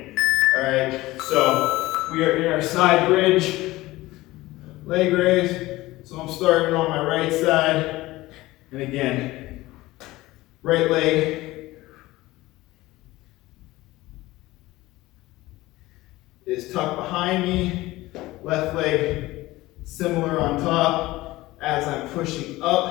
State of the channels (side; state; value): right; quieter; 18.6 dB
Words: All right, so we are in our side bridge, leg raise. So I'm starting on my right side, and again, right leg is tucked behind me, Left leg similar on top. As I'm pushing